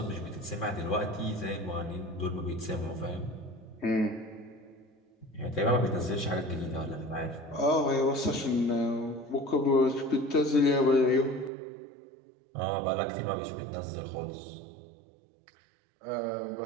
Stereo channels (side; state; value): left; drops out; at 11.5 s